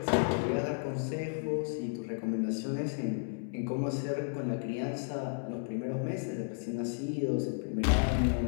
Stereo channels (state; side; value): silent; right; digital silence